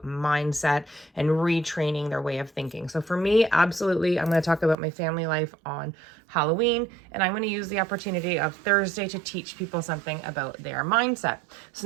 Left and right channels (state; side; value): drops out; left; at 4.8 s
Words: mindset and retraining their way of thinking. So for me, absolutely, I'm going to talk about my family life on Halloween, and I'm going to use the opportunity of Thursday to teach people something about their mindset. So